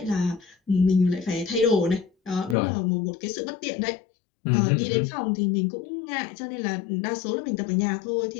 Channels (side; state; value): right; drops out; at 2.6 s